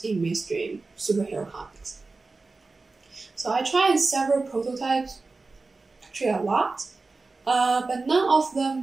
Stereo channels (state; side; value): quieter; left; 3.7 dB